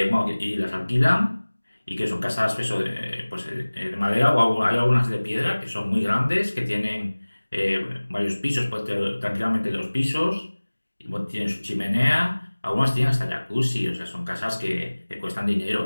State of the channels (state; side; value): inverted; both; correlation -1.00